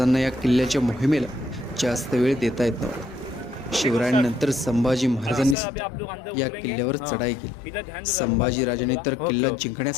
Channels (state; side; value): drops out; right; at 5.6 s